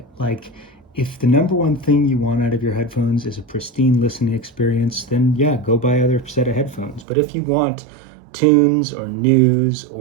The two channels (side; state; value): left; drops out; at 7.1 s